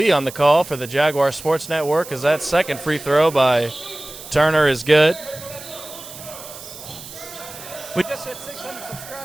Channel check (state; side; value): noise; right; hiss, 14 dB below the sound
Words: on the call for the Jaguar Sports Network, as that second free throw by Turner is good. We just hit 600